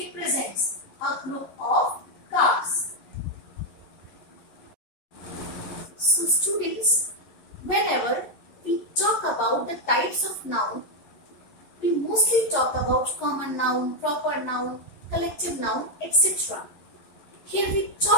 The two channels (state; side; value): late; right; 11 ms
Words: a group of cars. So students, whenever we talk about the types of noun, we mostly talk about common noun, proper noun, collective noun, etc. Here we